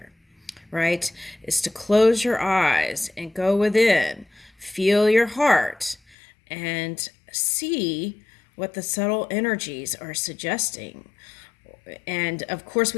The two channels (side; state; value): right; drops out; at 6.2 s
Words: right? Is to close your eyes and go within, feel your heart, and see what the subtle energies are suggesting. And of course,